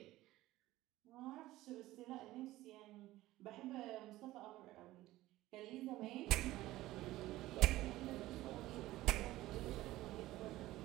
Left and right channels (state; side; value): quieter; left; 16.7 dB